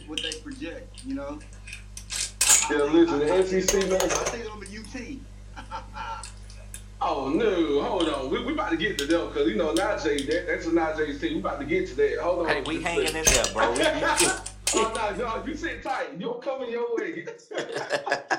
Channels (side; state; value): both; identical; correlation 1.00